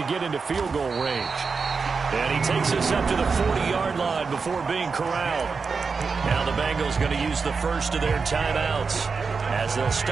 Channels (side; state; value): left; quieter; 5.0 dB